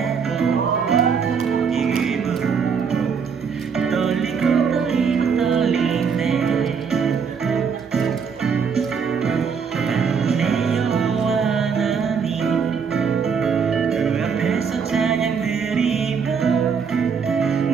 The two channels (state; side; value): quieter; left; 6.2 dB